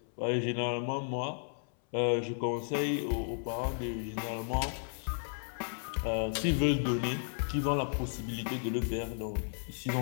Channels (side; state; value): right; silent; 55 dB below the other